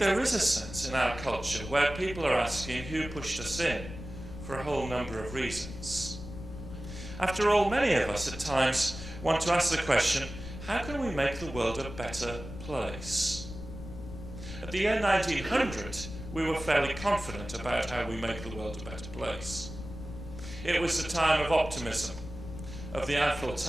is a sense in our culture where people are asking who pushed us in for a whole number of reasons. After all, many of us at times want to ask the question, how can we make the world a better place? At the year 1900, we were fairly confident about how we make the world a better place. It was the time of optimism, of the Eiffel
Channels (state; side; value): noise; left; rumble, 11 dB below the sound